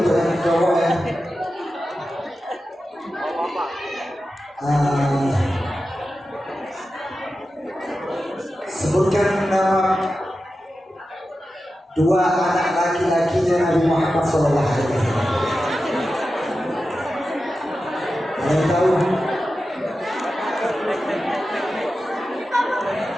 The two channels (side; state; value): both; normal; correlation 0.92